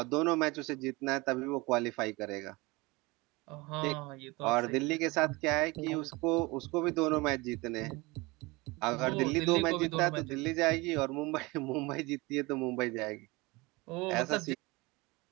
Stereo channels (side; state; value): left; quieter; 24.0 dB